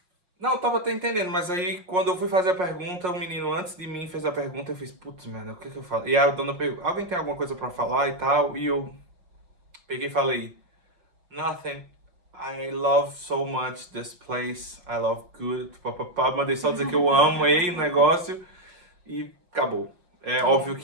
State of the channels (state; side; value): late; left; 5.5 ms